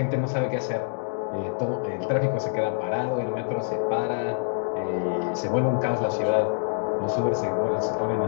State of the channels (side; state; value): right; silent; digital silence